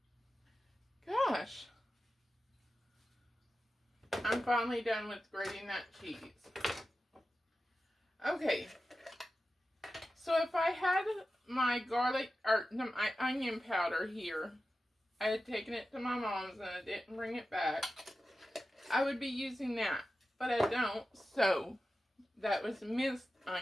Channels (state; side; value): normal; both; correlation 0.93